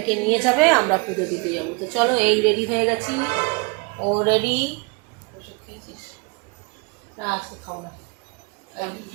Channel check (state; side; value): quieter; left; 30.6 dB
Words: নিয়ে যাবে, আমরা পুজো দিতে যাব। তো চলো, এই রেডি হয়ে গেছি। ও রেডি। না আজকে খাবো না,